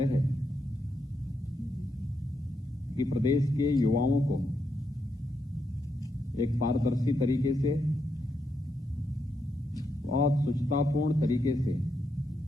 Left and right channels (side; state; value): both; normal; correlation 0.82